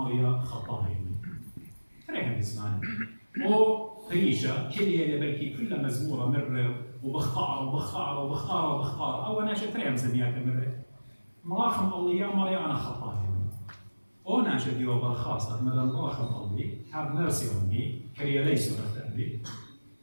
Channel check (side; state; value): both; inverted; correlation -1.00